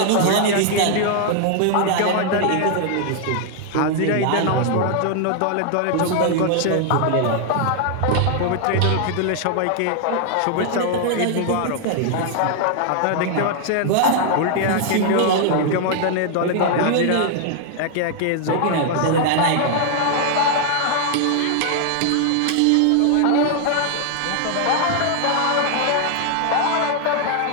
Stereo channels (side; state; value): both; different; correlation 0.00